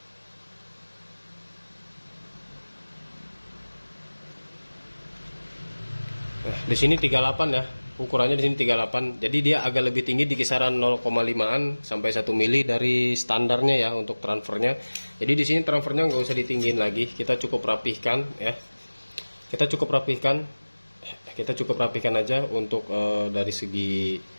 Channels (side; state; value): both; inverted; correlation -1.00